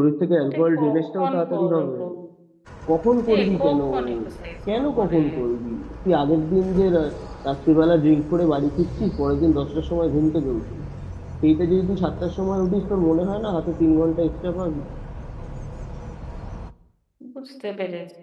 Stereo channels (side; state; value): both; identical; correlation 1.00